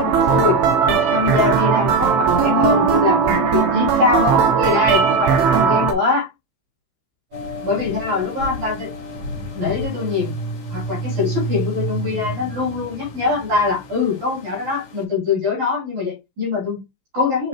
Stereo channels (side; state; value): left; late; 15 ms